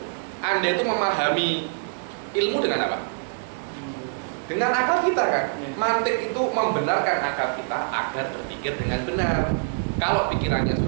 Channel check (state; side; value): silent; left; digital silence